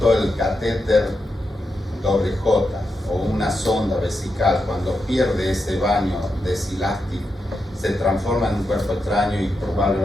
el catéter doble J o una sonda vesical, cuando pierde ese baño desilástico, se transforma en un cuerpo extraño y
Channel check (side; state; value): both; normal; correlation 0.86